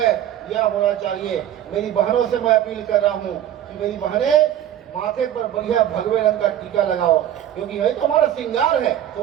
यह होना चाहिए। मेरी बहनों से मैं अपील कर रहा हूँ कि मेरी बहनें माथे पर बढ़िया भगवे रंग का टीका लगाओ, क्योंकि यही तो हमारा श्रृंगार है।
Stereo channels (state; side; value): quieter; left; 11.3 dB